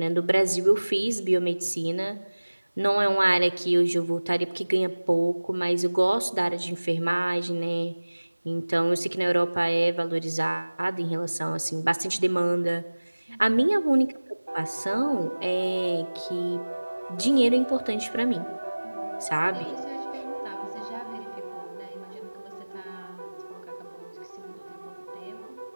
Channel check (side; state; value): both; inverted; correlation -1.00